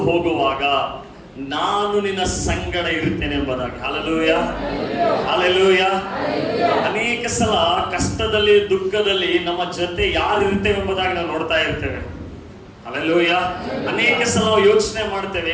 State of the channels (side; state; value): both; identical; correlation 1.00